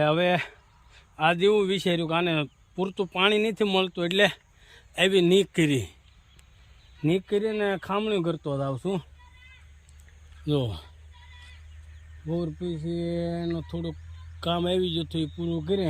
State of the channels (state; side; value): identical; both; correlation 1.00